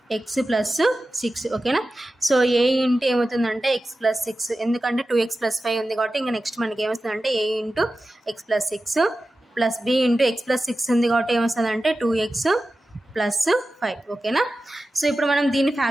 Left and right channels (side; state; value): both; normal; correlation 0.94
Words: x plus 6, ఓకేనా. సో ఏ ఇంటూ ఏమవుతుందంటే x ప్లస్ 6, ఎందుకంటే 2x ప్లస్ 5 ఉంది కాబట్టి ఇంకా నెక్స్ట్ మనకి ఏమొస్తుందంటే a into x plus 6 plus b into x plus 6 ఉంది కాబట్టి ఏమొస్తుందంటే 2x ప్లస్ 5, ఓకేనా. సో ఇప్పుడు మనం దీన్ని